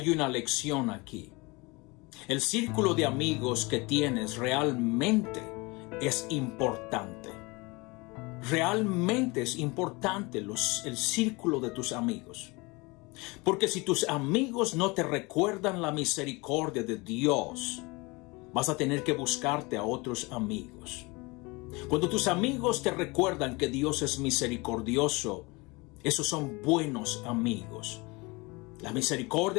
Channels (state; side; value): quieter; right; 25.5 dB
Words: una lección aquí. El círculo de amigos que tienes realmente es importante. Realmente es importante el círculo de tus amigos. Porque si tus amigos no te recuerdan la misericordia de Dios, vas a tener que buscarte a otros amigos. Cuando tus amigos te recuerdan que Dios es misericordioso, esos son buenos amigos. La